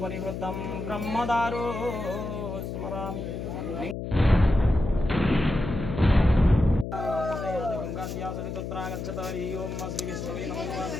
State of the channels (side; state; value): left; noise; hum, 6 dB below the sound